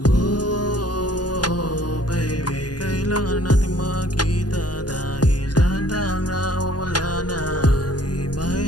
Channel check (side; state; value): right; late; 0.70 ms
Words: Oh, baby, kailangan natin magkita dahil dahan-dahang nawawala na ang